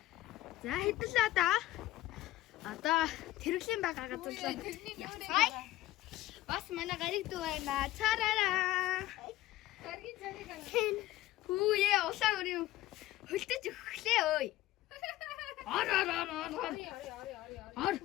За хэдэлээ да. Одоо тэрэглийн байгаа газар руу. Бас манай гариг дүү байна. Цараараа. Гаргийн цариг аа. Хүүе улаан өрөө хөлтөж өглөө ой. Ор.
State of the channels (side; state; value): right; quieter; 15.8 dB